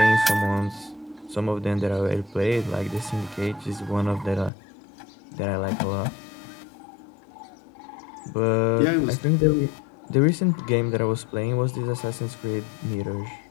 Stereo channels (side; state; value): right; drops out; at 4.5 s